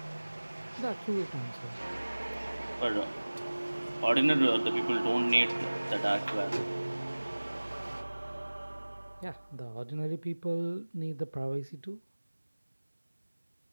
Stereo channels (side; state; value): both; inverted; correlation -1.00